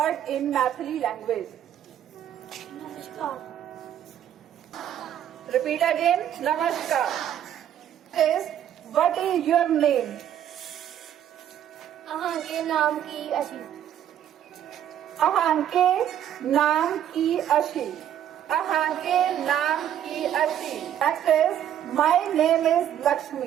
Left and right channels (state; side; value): quieter; left; 10.5 dB